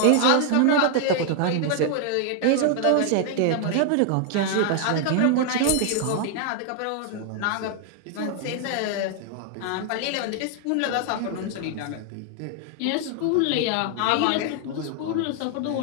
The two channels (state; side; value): different; both; correlation 0.00